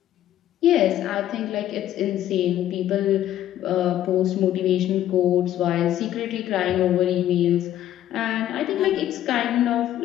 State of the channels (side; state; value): right; quieter; 12.3 dB